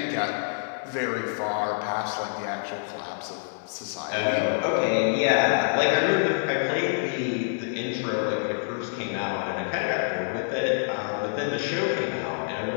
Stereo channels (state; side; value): silent; right; digital silence